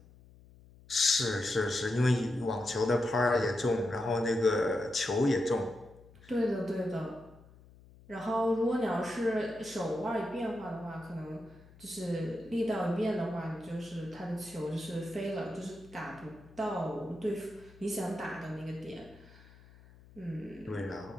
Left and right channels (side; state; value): left; noise; hum, 23 dB below the sound